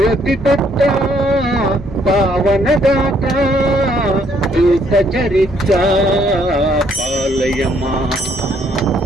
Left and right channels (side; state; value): both; normal; correlation 0.67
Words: ಪುತ್ರ ಪಾವನದಾತ ದೂತ ಚರಿತ್ರ ಪಾಲಯಮ.